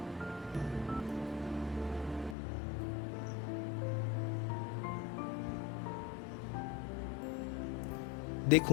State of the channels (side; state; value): right; drops out; at 2.4 s